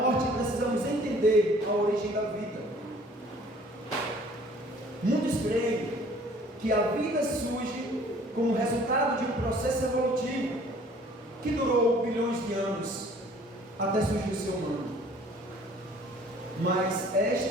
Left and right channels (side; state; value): both; normal; correlation 0.54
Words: precisamos entender a origem da vida. Muitos creem que a vida surge como resultado de um processo evolutivo que durou bilhões de anos até surgir o ser humano. Mas